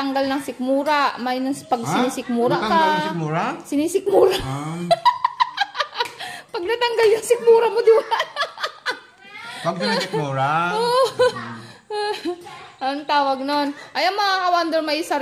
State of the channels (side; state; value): both; identical; correlation 1.00